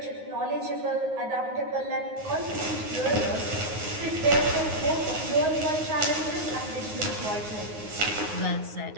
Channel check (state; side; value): late; left; 9.5 ms